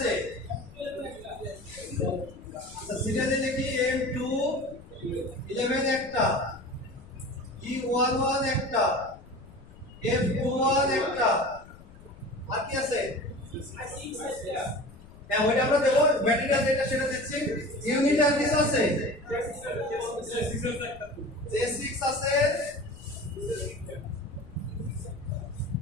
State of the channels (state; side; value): noise; left; rumble, 20 dB below the sound